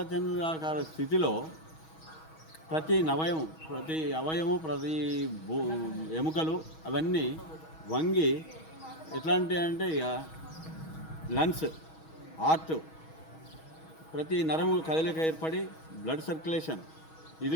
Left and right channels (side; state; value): right; late; 6.3 ms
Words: స్థితిలో ప్రతి అవయము ప్రతి ఎముకలు అవన్నీ వంగి ఎట్లాంటి అంటే ఇక లంగ్స్, హార్ట్, ప్రతి నరము కదలిక ఏర్పడి బ్లడ్ సర్క్యులేషన్, ఇది